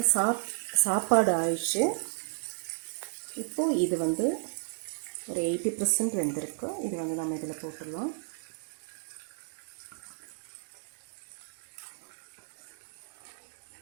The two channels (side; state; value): left; silent; digital silence